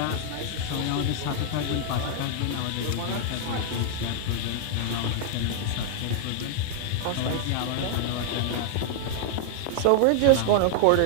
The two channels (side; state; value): both; different; correlation -0.01